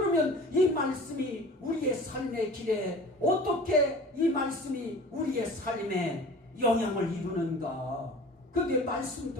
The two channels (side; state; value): both; normal; correlation 0.42